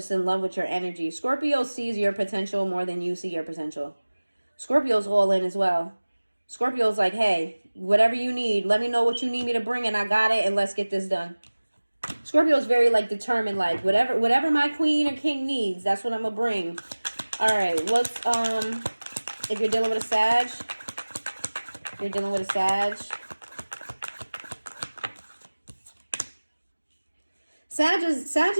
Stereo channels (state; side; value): inverted; both; correlation -1.00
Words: in love with your energy. Scorpio sees your potential more than you see your potential. Scorpio's all in as well. Scorpio's like, hey, whatever you need, let me know what you need me to bring and I got it and let's get this done. Scorpio's very like determined, like whatever my queen or king needs, that's what I'm gonna bring. All right, what's if you're dealing with a Sag, Sag